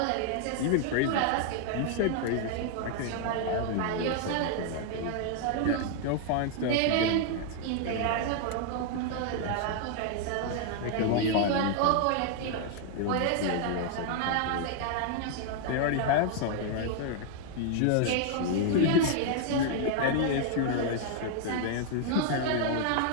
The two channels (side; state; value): both; different; correlation 0.00